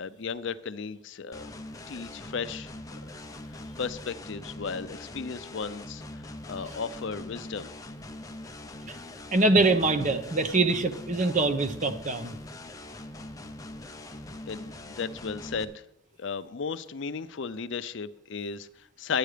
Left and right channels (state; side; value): normal; both; correlation 0.32